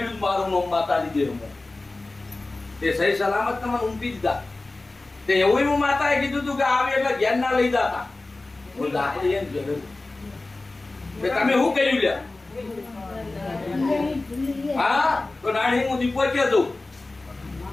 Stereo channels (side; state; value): right; quieter; 3.1 dB